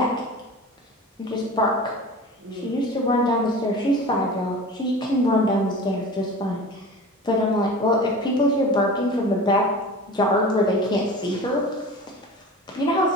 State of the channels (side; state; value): both; normal; correlation 0.36